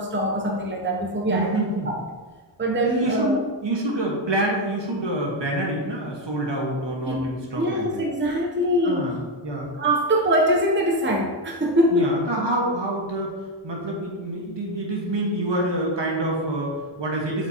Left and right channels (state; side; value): normal; both; correlation 0.08